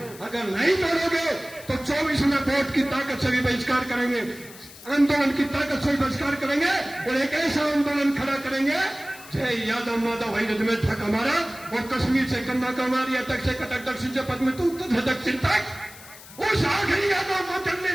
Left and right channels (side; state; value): left; noise; hiss, 18 dB below the sound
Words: अगर नहीं तोड़ोगे तो 24 में वोट की ताकत से भी बहिष्कार करेंगे, आंदोलन की ताकत से भी बहिष्कार करेंगे और एक ऐसा आंदोलन खड़ा करेंगे, जय यादव माधव अहिर रेजिमेंट हक हमारा। और कश्मीर से कन्याकुमारी तक से कटक दक्षिण से पद्म तो उत्तर से दक्षिण तक उस आखिरी यादव को जलने